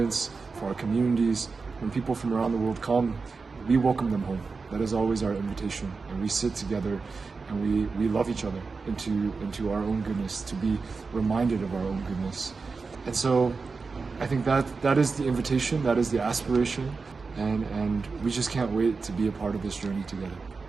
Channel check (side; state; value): left; quieter; 4.5 dB